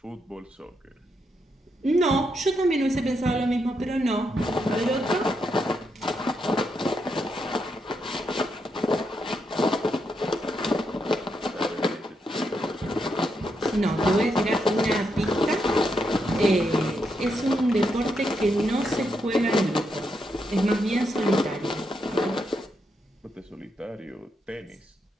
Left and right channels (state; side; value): normal; both; correlation 0.81